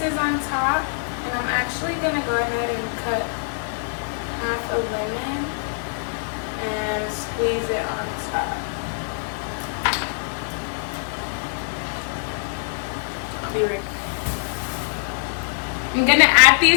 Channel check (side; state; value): right; silent; digital silence